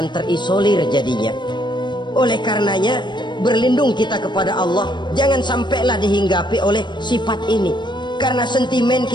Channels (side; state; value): right; late; 0.22 ms